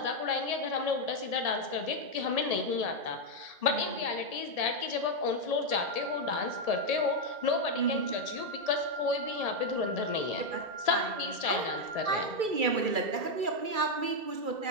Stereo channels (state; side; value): late; left; 2.3 ms